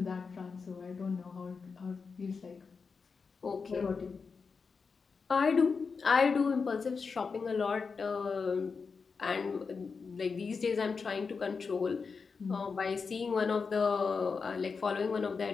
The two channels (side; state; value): right; quieter; 5.1 dB